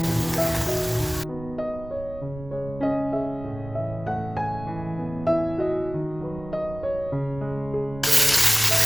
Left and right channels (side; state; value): right; noise; rumble, 14 dB below the sound